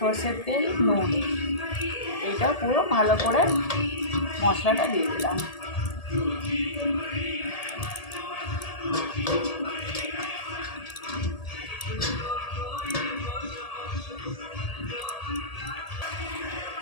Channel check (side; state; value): right; late; 1.8 ms